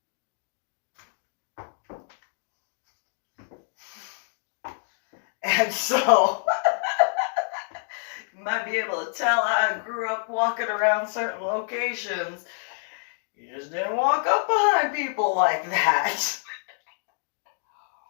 And so, you might be able to tell I grew up walking around certain locations. You just didn't walk up behind people like that.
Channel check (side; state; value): right; silent; digital silence